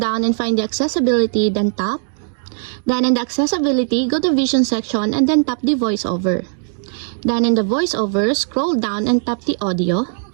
and find the accessibility, then tap. Then in the accessibility, go to vision section and then tap the voiceover. Then in the voiceover, scroll down and tap the audio.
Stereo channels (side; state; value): left; silent; digital silence